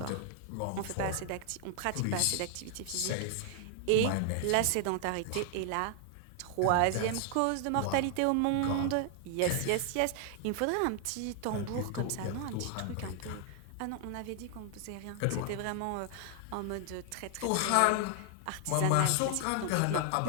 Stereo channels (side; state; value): both; different; correlation 0.00